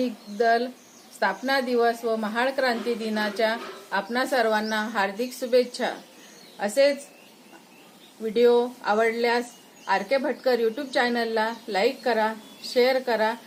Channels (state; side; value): identical; both; correlation 1.00